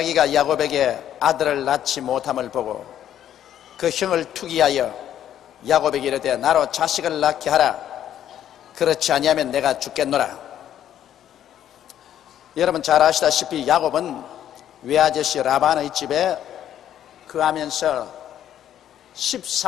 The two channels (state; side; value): quieter; right; 10.8 dB